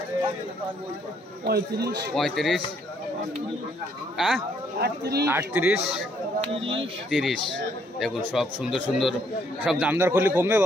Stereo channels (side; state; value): both; normal; correlation 0.69